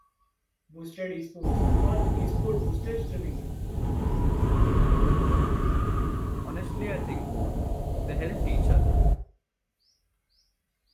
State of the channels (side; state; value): both; identical; correlation 1.00